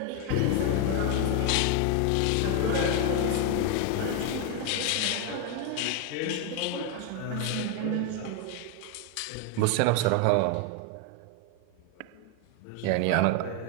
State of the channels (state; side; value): different; both; correlation 0.01